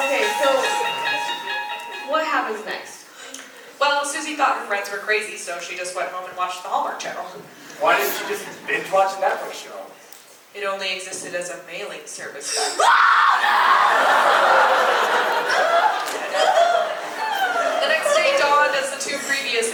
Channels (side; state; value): both; identical; correlation 1.00